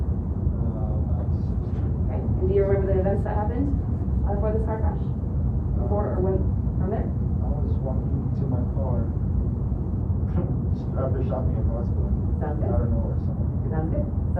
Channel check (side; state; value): both; identical; correlation 1.00